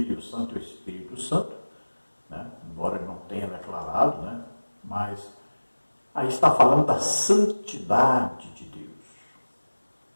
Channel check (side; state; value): both; inverted; correlation -1.00